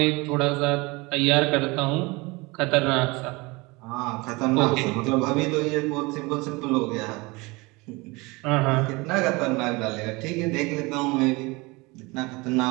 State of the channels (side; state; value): left; quieter; 24.6 dB